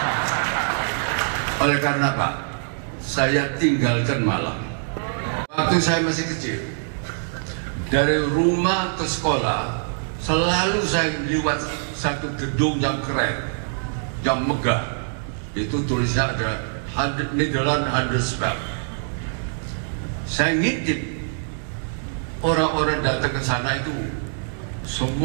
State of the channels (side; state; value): left; silent; digital silence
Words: Oleh karena apa? Saya tinggalkan Malang. Waktu saya masih kecil, dari rumah ke sekolah, selalu saya lewat satu gedung yang keren, yang megah. Itu tulisnya ada Nederland Handelsbank. Saya ngintip, orang-orang datang ke sana itu